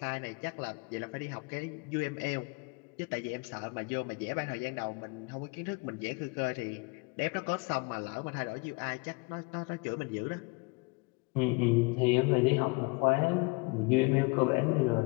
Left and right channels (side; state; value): right; quieter; 28.7 dB